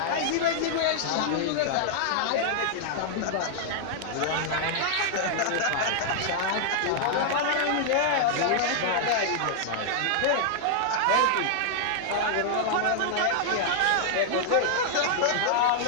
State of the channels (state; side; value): different; both; correlation -0.01